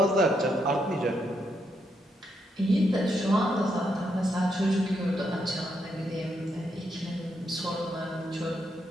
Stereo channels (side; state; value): both; normal; correlation 0.79